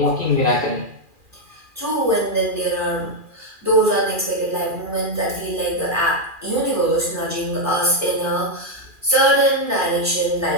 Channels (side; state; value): left; late; 2.4 ms